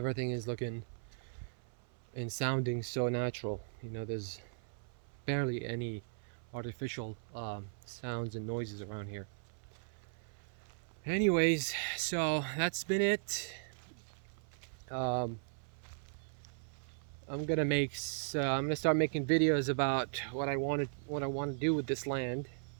is looking and sounding so natural, you know. There's barely any artificial sounds and noises around here. Anyways, so that's been it. I'm gonna start making videos about what I want to do with this land,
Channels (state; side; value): silent; left; 53 dB below the other